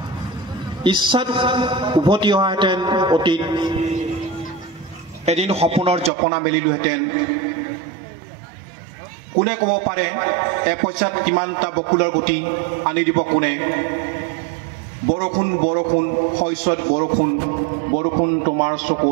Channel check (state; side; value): drops out; left; at 6.1 s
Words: ইচ্ছাত উভতি অহাহেঁতেন অতীত এদিন সপোনৰ জপনা মেলিলোহেঁতেন কোনে ক'ব পাৰে এপইচাত কিমানটা বকুলৰ গুটি আনি দিব কোনে বৰষুণ বৰষুণ শস্যত বৰষুণ বৰষুণ তোমাৰ